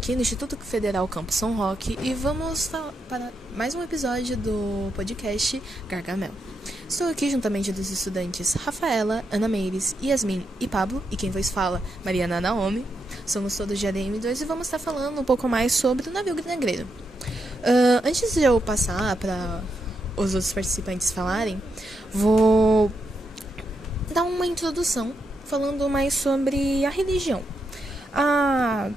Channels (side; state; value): both; normal; correlation 0.83